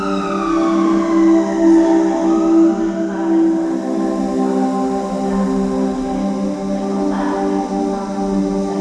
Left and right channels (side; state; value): both; identical; correlation 1.00